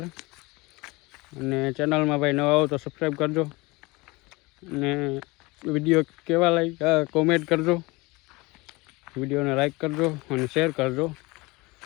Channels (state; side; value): quieter; right; 23.8 dB